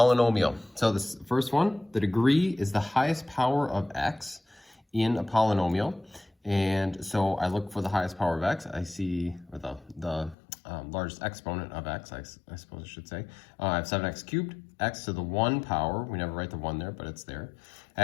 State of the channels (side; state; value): right; drops out; at 10.4 s